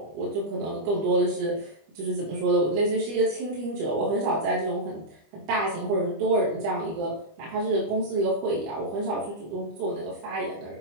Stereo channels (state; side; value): late; left; 25 ms